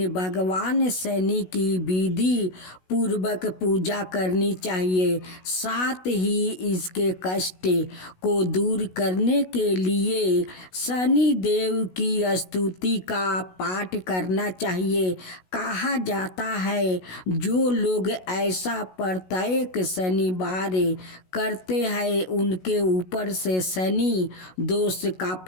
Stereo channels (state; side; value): late; right; 16 ms